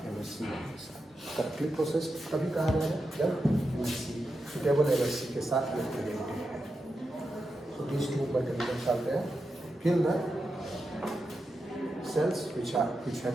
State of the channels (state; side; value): normal; both; correlation 0.88